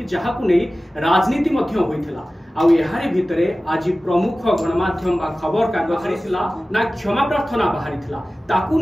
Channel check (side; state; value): both; normal; correlation 0.96